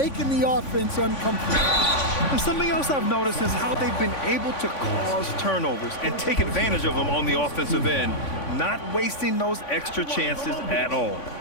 the offense uncomfortable. And something else I've noticed is how they've been able to cause turnovers and take advantage of them on the offensive end, not wasting those extra chances at all.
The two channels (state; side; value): late; right; 3.5 ms